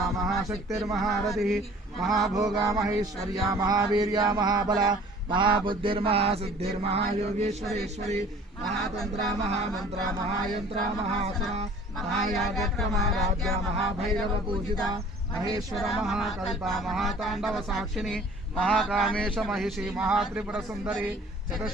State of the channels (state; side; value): normal; both; correlation 0.50